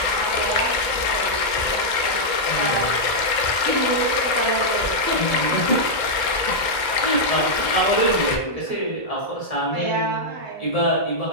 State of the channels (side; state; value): right; late; 2.1 ms